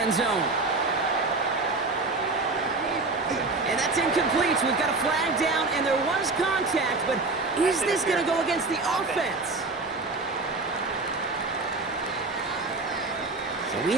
zone. And that's incomplete. We've got a flag down, and there was contact, but is this going to go against the offense? So we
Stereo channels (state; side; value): quieter; left; 3.5 dB